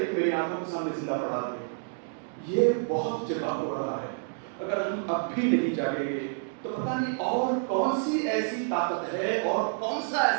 کہ میری آنکھوں کے سامنے زندہ پڑا دے. یہ بہت جگہ ہو رہا ہے. اگر ہم اب بھی نہیں جاگیں گے تو پتہ نہیں اور کون سی ایسی طاقت ہے اور کون سا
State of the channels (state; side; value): silent; left; digital silence